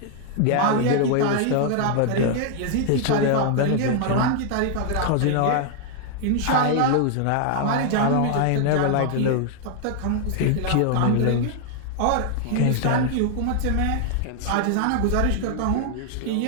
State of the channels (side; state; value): both; different; correlation 0.00